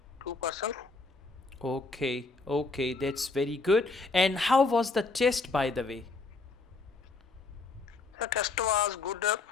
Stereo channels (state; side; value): quieter; right; 3.8 dB